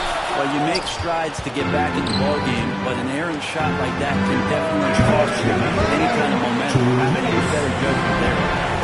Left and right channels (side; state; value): both; identical; correlation 1.00